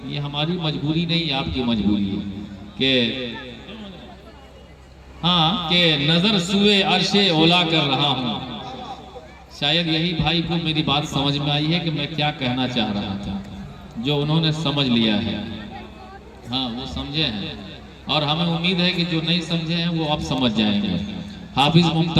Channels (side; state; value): both; identical; correlation 1.00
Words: ये हमारी मजबूरी नहीं, आपकी मजबूरी है कि हाँ कि नजर सुए अर्शे ओला कर रहा हूँ। शायद यही भाई को मेरी बात समझ में आई है कि मैं क्या कहना चाह रहा था, जो उन्होंने समझ लिया है। हाँ, वो समझे हैं और हमें उम्मीद है कि जो नहीं समझे हैं वो अब समझ जाएंगे। हाफिज